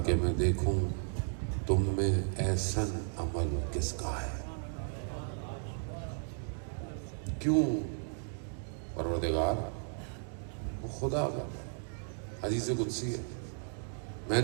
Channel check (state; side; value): silent; left; 55 dB below the other